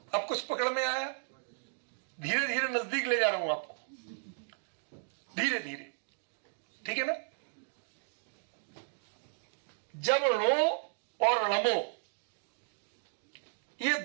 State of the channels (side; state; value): left; silent; digital silence